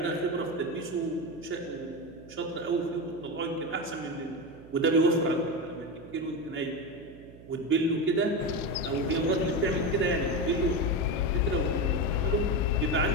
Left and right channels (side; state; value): right; noise; hum, 19 dB below the sound